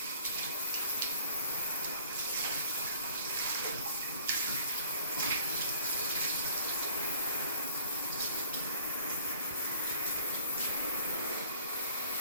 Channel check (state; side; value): inverted; both; correlation -0.54